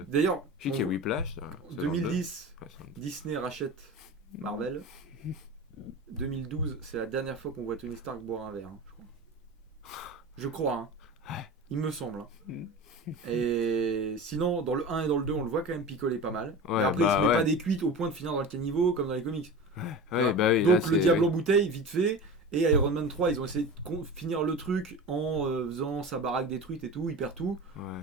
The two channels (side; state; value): both; normal; correlation 0.32